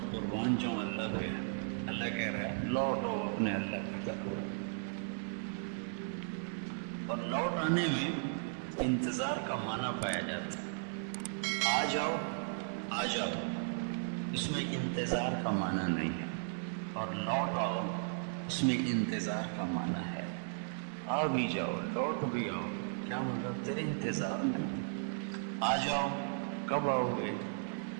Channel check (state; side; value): silent; left; 54 dB below the other